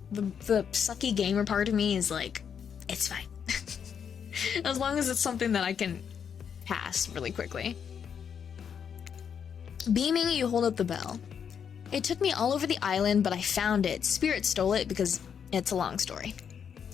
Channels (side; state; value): right; quieter; 7.5 dB